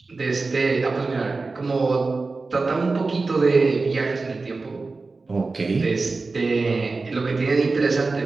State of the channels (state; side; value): quieter; left; 3.8 dB